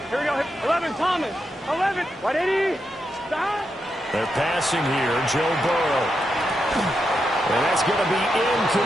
Here we go. 11, Thomas. 11. 180. Stop. They're passing here. Joe Burrow. And that's going to be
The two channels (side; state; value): both; normal; correlation 0.85